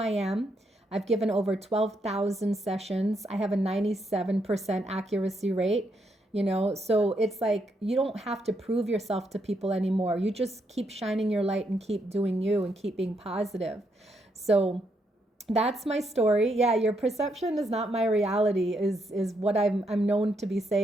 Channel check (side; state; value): both; normal; correlation 0.78